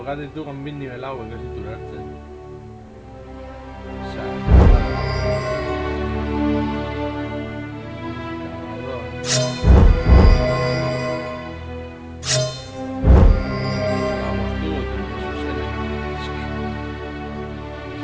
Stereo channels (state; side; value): identical; both; correlation 1.00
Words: jugate tú con bien nivelado, que es durarte. O sea, vamos tú,